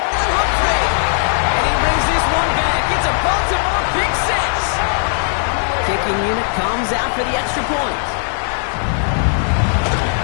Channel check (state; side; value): silent; right; 61 dB below the other